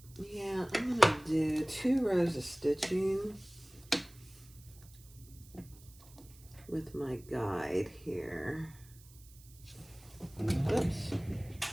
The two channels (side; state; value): right; noise; hiss, 23 dB below the sound